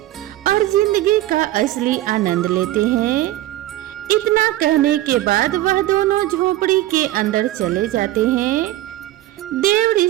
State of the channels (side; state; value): left; quieter; 15.1 dB